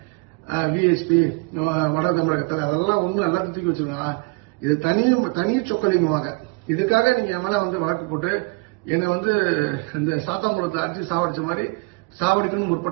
விஎஸ்பி வட தமிழகத்தில் அதெல்லாம் ஒன்றும் எல்லாத்தையும் தூக்கி வச்சிருக்காங்க. இது தனி சொக்கலிங்கமாக இதுக்காக நீங்க என் மேல வந்து வழக்கு போட்டு என்னை வந்து இந்த சாத்தாங்குளத்தை அடிச்சு சாவடிச்ச மாதிரி சாவடிக்கணும்னு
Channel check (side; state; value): left; quieter; 28.2 dB